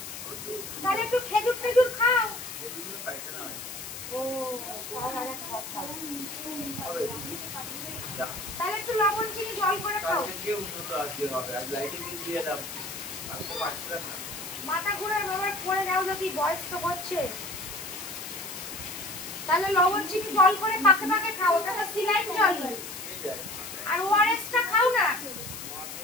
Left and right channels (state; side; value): noise; left; hiss, 10 dB below the sound